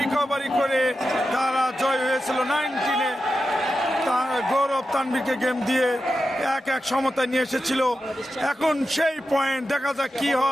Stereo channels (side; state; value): both; normal; correlation 0.90